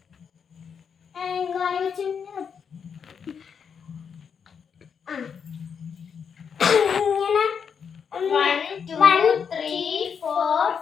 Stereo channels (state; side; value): quieter; right; 6.8 dB